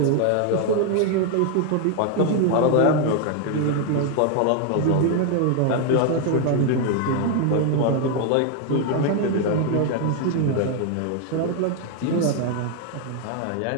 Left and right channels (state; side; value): different; both; correlation 0.01